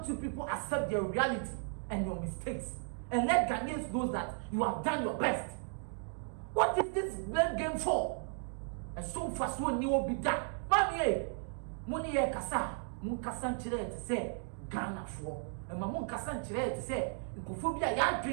you people accept your reality and your mistakes and let Ghanaians know that you have done your best? What is this blame game for? And so fast one you will be done. Mami, money kasa, mun kasa nchire to say Ghana for. And my mun kasa nchire to say nkophobia ya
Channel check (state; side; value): silent; left; 54 dB below the other